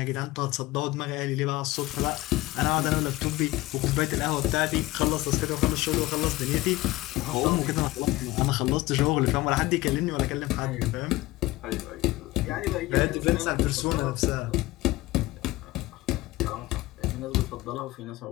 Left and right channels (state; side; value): quieter; right; 19.0 dB